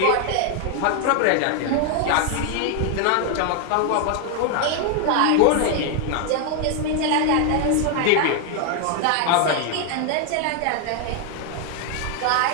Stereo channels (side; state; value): both; different; correlation 0.00